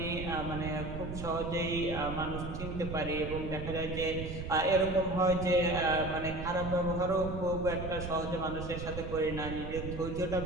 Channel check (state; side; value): noise; right; rumble, 7 dB below the sound